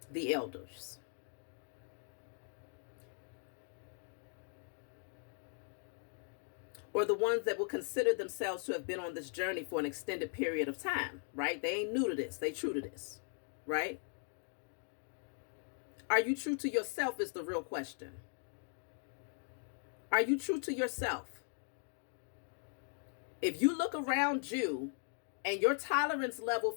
the elders. Or the ones that will consider themselves to have been on this journey for an extended period of time, right? They ain't new to this. They true to this, right? Are you true to yourself is the real question. Are you true to yourself? If you look around you and your tolerance level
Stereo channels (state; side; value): silent; right; 52 dB below the other